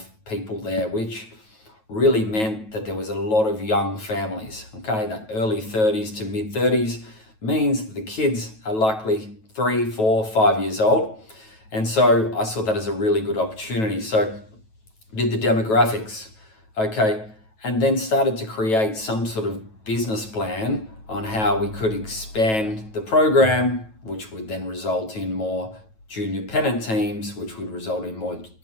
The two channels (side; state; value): right; late; 9.2 ms